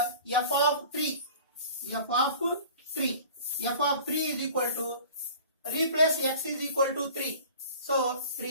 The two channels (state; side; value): inverted; both; correlation -0.44